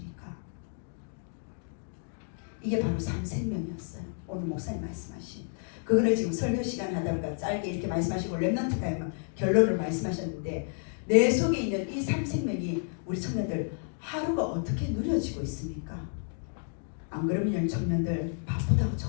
이게 바로 삶생명이었어요. 오늘 목사님 말씀하신 그거를 지금 설교 시간에 하다 보니까 짧게 이렇게 말씀하시고 랩넌트 타임 결론을 말씀하셨는데, 내 속에 있는 이 삶생명이 우리 청년들 하루가 어떻게 누려지고 있습니까? 안 그러면 청년들 바쁘다고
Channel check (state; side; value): silent; right; 57 dB below the other